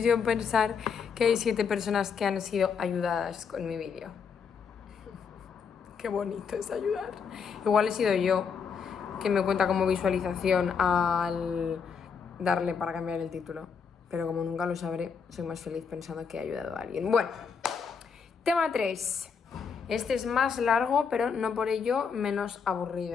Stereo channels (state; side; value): quieter; right; 6.2 dB